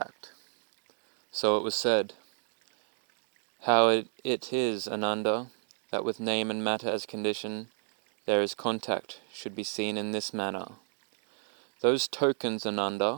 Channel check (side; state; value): left; silent; digital silence